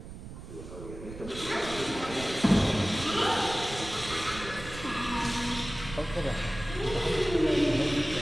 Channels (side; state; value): right; noise; rumble, 12 dB below the sound